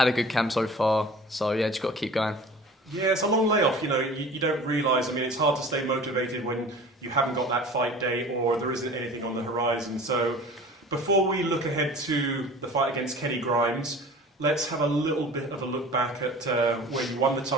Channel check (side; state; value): both; normal; correlation 0.42